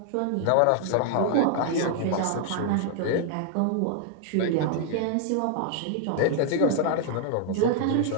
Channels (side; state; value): both; different; correlation 0.00